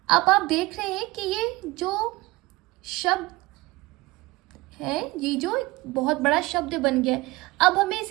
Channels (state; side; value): quieter; left; 21.4 dB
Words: अब आप देख रहे हैं कि ये जो शब्द है, ये जो बहुत बड़ा शब्द बन गया है, अब हमें